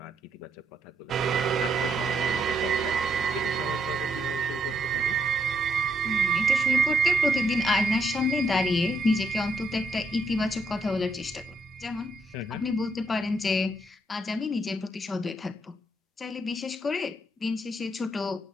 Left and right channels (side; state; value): both; normal; correlation 0.74